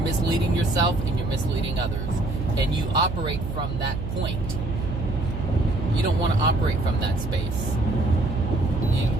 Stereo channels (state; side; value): noise; right; hum, 5 dB below the sound